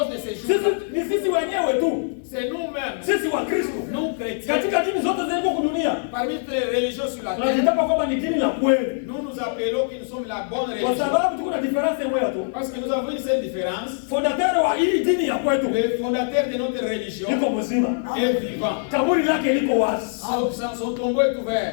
de ces Sisi jours, ni sisi wenyewe tu. c'est nous-mêmes, Sisi wa Kristo. nous chrétiens, Katika dini zote zilizo kudunia. parmi toutes les religions sur la terre, Tunajitapa kwamba ni dini la kweli. nous nous appelons que nous sommes la bonne Kwa religion. sababu tuko na difference moja tu. Parce que nous avons une seule différence. Fondateur wa hii dini ya kwetu Le fondateur de notre religion liko mzima. est vivant. Kaburi lake liko wazi. Son tombeau est ouvert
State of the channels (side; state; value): right; silent; digital silence